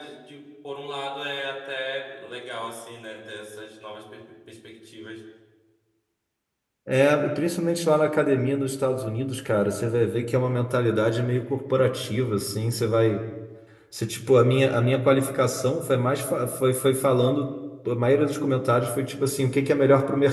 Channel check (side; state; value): both; identical; correlation 1.00